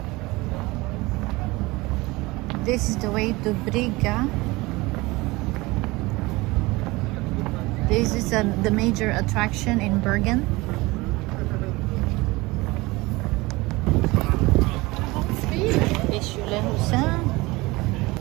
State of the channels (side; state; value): left; quieter; 22.1 dB